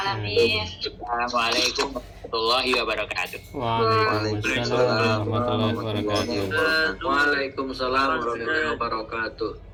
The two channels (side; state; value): both; identical; correlation 1.00